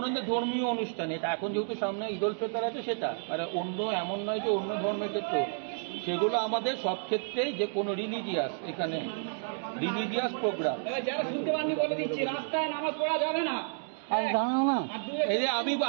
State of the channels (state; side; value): silent; left; digital silence